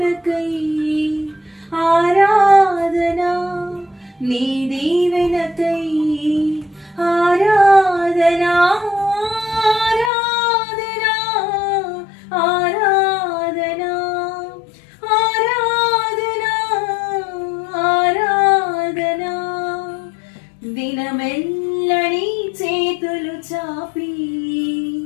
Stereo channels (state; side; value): drops out; right; at 10.1 s